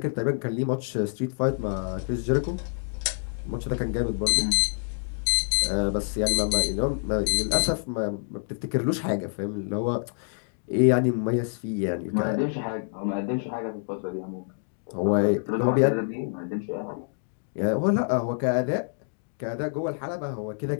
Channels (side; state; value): right; silent; digital silence